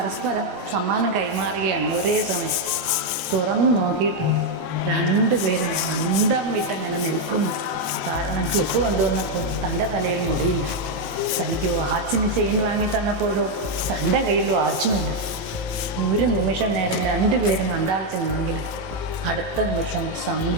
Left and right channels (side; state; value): left; late; 18 ms